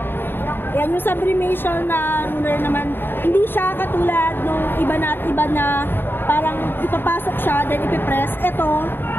Yan yung sublimation na ruler naman. Hindi siya katulad nung iba na parang ipapasok siya, then ipipress. Ito,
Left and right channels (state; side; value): late; right; 0.098 ms